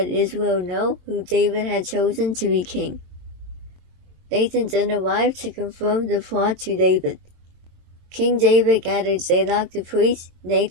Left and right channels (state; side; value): late; left; 22 ms